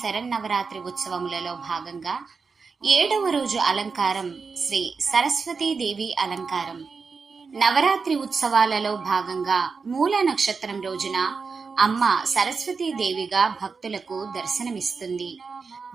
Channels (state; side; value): quieter; left; 5.0 dB